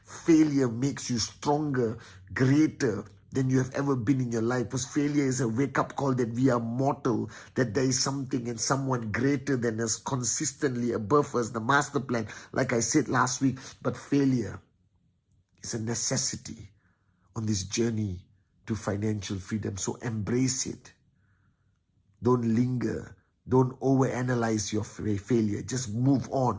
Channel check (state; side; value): identical; both; correlation 1.00